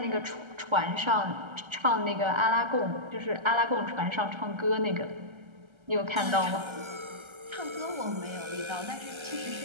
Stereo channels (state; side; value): late; left; 1.3 ms